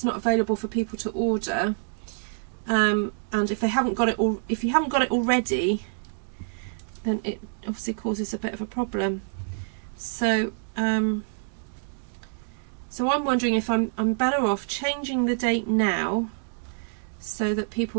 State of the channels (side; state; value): left; silent; digital silence